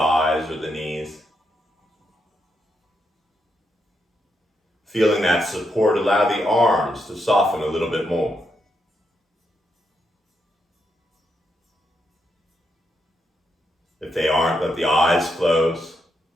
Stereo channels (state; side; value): normal; both; correlation 0.81